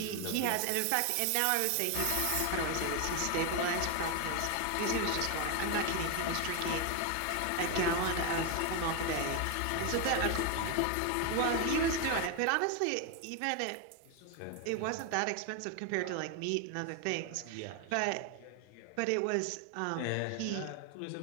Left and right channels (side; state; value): both; different; correlation 0.01